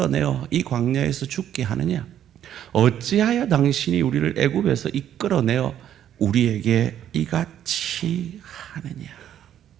이 광야에서 죽게 하느냐? 어찌하여 당신이 우리를 애굽에서 이끌어내어 우리에게 이같이 하느냐.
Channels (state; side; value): quieter; left; 10.6 dB